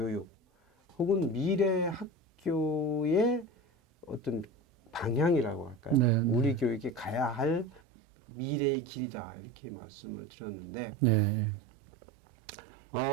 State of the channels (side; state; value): left; drops out; at 7.8 s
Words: 혹은 미래 학교의 어떤 방향이라고 할까요? 우리 교육이 가야 할 미래의 길이다 이렇게 말씀을 드렸는데